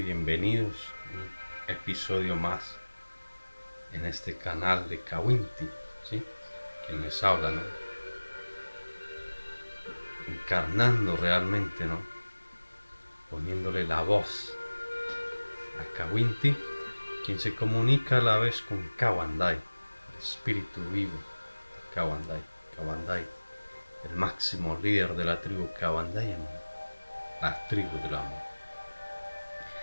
a un episodio más en este canal de Kawinti, ¿sí? Quien les habla, ¿no? Encarnando realmente, ¿no? Poniéndole la voz a Kawinti, quien se comunica a la vez con Kawandai, el espíritu vivo de Kawandai. Kawandai, el máximo líder de la tribu Kawandai, la tribu del amor.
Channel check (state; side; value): inverted; both; correlation -1.00